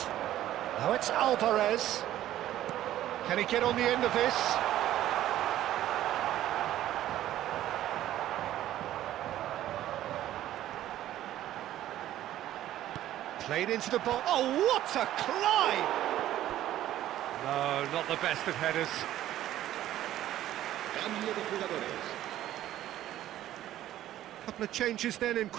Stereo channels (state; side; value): quieter; left; 13.2 dB